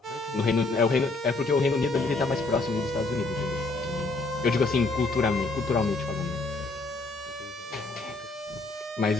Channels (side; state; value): right; quieter; 3.3 dB